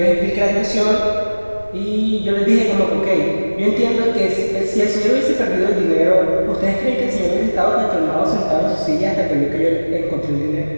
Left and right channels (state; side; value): inverted; both; correlation -1.00